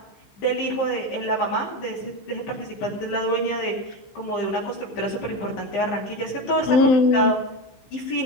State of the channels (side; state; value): right; late; 15 ms